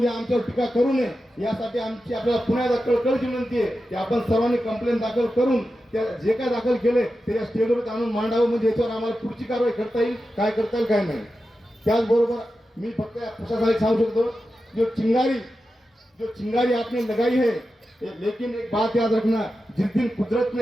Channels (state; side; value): normal; both; correlation 0.91